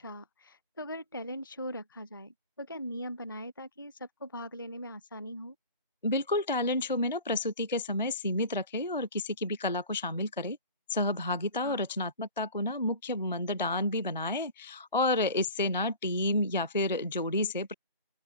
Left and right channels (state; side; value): inverted; both; correlation -0.38